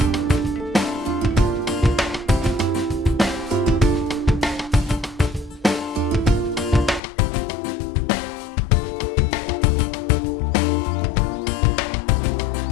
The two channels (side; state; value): right; drops out; at 7.0 s